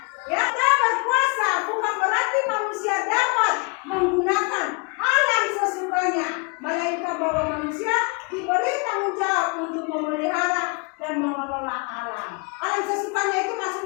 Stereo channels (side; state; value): right; quieter; 32.1 dB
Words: Ya, kita berkuasa bukan berarti manusia dapat menggunakan alam sesukanya, melainkan bahwa manusia diberi tanggung jawab untuk memelihara dan mengelola alam. Alam sesukanya itu